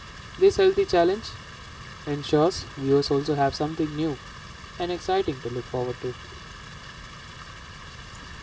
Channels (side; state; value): both; identical; correlation 1.00